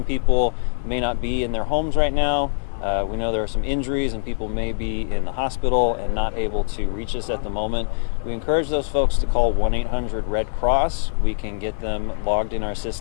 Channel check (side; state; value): right; silent; 64 dB below the other